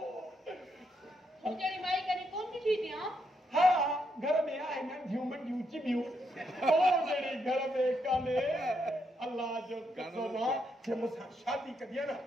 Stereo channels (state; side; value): normal; both; correlation 0.79